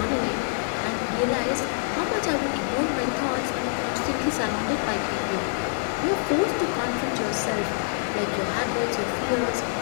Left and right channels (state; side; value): silent; right; digital silence